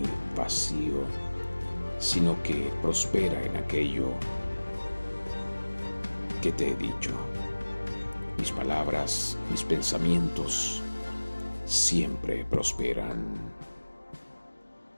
vacío, sino que prospera en aquello que te he dicho. Mis palabras, mis pensamientos siempre prosperan.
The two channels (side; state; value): both; inverted; correlation -1.00